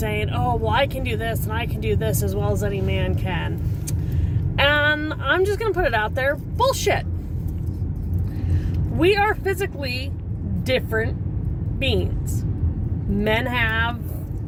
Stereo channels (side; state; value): both; identical; correlation 1.00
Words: oh, well, I can do this and I can do this as well as any man can. And I'm just going to put it out there. Bullshit. We are physically different beings. Men have